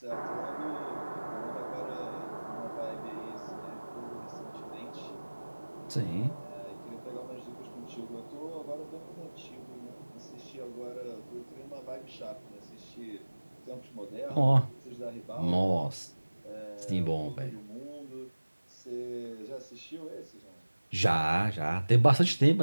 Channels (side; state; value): both; inverted; correlation -1.00